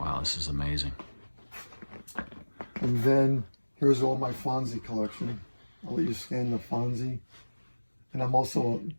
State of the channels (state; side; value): inverted; both; correlation -1.00